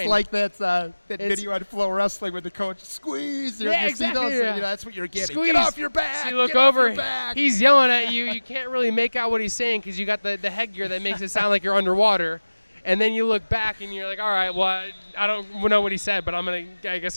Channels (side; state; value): both; inverted; correlation -1.00